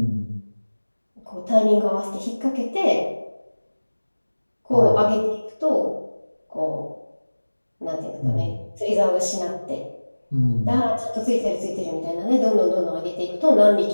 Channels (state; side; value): inverted; both; correlation -1.00